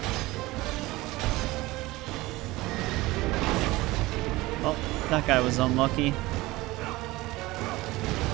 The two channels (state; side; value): quieter; left; 19.8 dB